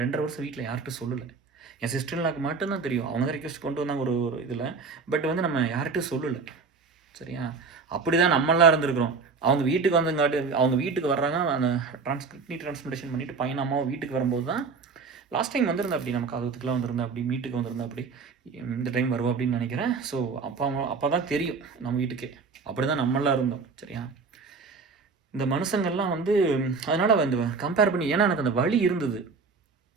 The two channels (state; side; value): quieter; left; 4.8 dB